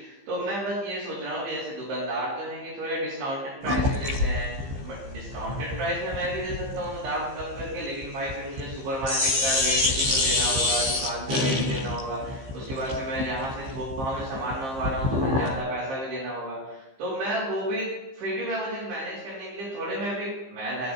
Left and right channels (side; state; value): left; late; 15 ms